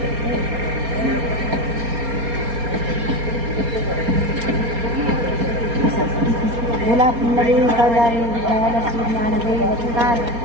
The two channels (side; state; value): left; late; 4.3 ms